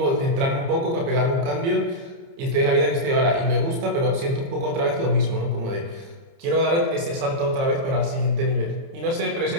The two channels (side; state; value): left; late; 30 ms